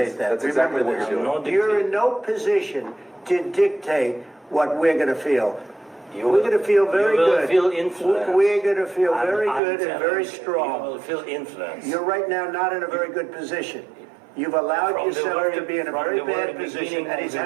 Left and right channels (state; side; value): drops out; left; at 9.6 s